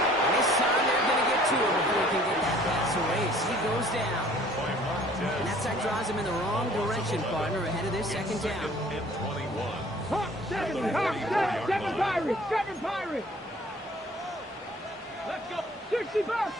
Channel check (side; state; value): both; normal; correlation 0.54